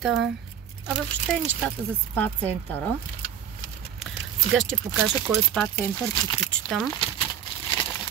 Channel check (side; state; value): left; quieter; 9.2 dB